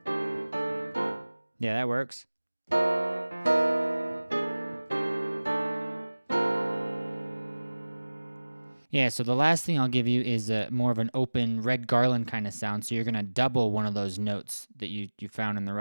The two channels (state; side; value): inverted; both; correlation -1.00